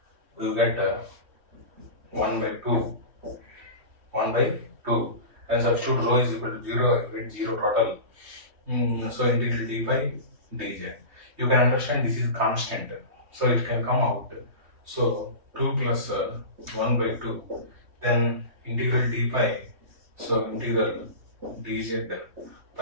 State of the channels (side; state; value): left; late; 3.2 ms